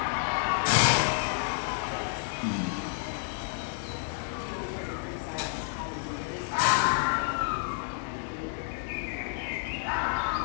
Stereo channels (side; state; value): right; silent; 58 dB below the other